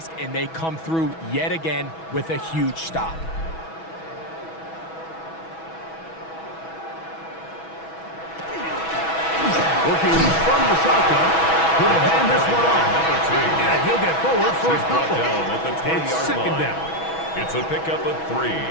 and they come through yet again with a huge stop. Working from the shotgun, he'll hand this one off. And he'll get forward for a couple. It's second down. It's a pickup of 3.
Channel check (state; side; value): late; right; 6.1 ms